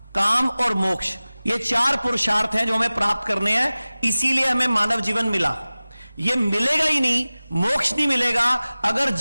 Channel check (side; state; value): both; inverted; correlation -0.98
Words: काम और मोक्ष, ये 4 पुरुषार्थ हैं जो हमें प्राप्त करने हैं। इसीलिए हमें मानव जीवन मिला। ये मिलेगा ही नहीं, मोक्ष नहीं मिलेगा अगर